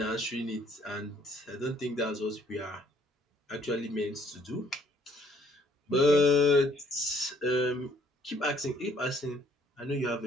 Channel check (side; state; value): both; normal; correlation 0.63